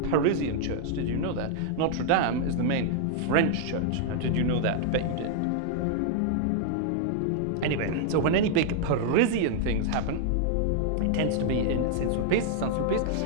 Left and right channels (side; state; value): both; different; correlation -0.01